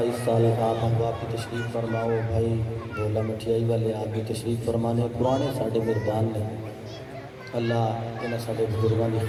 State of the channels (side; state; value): both; identical; correlation 1.00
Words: اس سال آپ احباب کی تشریف فرماؤ۔ بھائی بولا مٹھیائی والے آپ بھی تشریف فرمانے، پرانے ساڈے مہربان نے، اللہ انہاں ساڈے بزرگاں دی